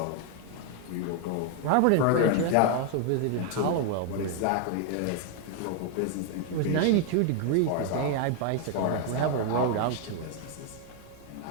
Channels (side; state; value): both; different; correlation 0.00